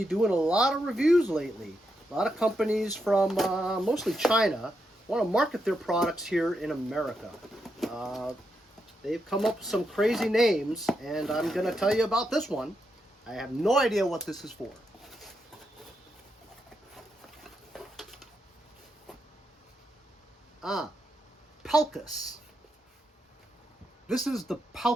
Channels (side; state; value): both; normal; correlation 0.83